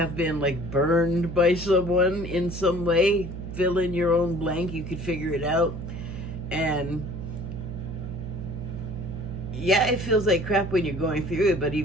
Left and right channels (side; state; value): right; noise; hum, 8 dB below the sound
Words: been, like, burned by someone in some way. Fill in your own blank, you could figure it out. And yeah, it feels like crap when you're going through it, but